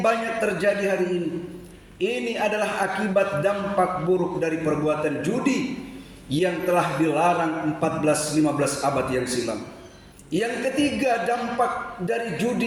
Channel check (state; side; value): identical; both; correlation 1.00